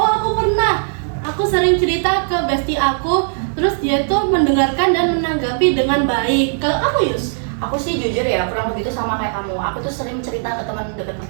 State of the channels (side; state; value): left; silent; digital silence